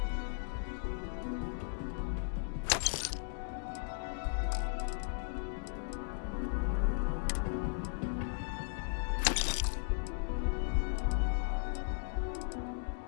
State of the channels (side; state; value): right; silent; digital silence